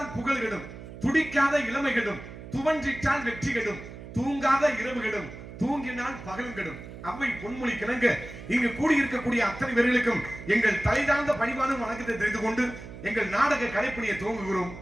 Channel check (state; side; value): noise; right; hum, 13 dB below the sound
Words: புகழ் கெடும், துடிக்காத இளமை கெடும், துவன்றிட்டால் வெற்றி கெடும், தூங்காத இரவு கெடும், தூங்கினால் பகலும் கெடும். அவை பொன்மொழி கிணங்க இங்கு கூடியிருக்கக்கூடிய அத்தனை பேர்களுக்கும் எங்கள் தலைதாழ்ந்த பணிவான வணக்கத்தை தெரிந்து கொண்டு எங்கள் நாடக கலைப்பணியை துவங்குகிறோம்.